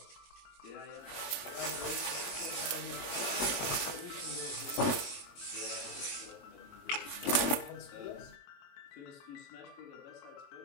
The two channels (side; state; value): right; late; 21 ms